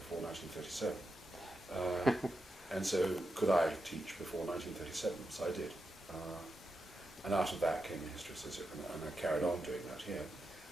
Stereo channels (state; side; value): normal; both; correlation 0.87